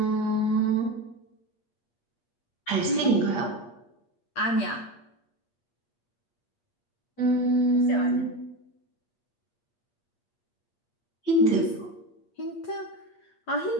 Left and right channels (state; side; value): late; right; 8.5 ms